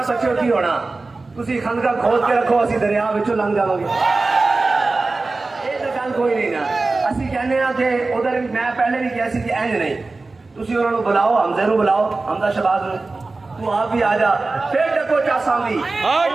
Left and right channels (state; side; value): quieter; left; 3.5 dB